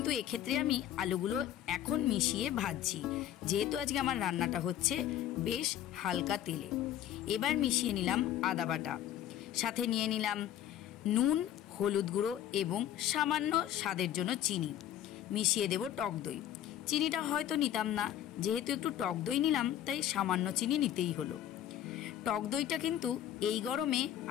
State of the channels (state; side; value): quieter; right; 11.4 dB